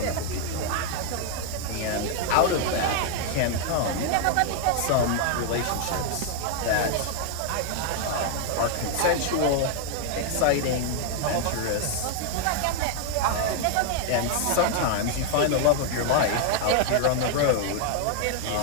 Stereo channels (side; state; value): both; different; correlation 0.00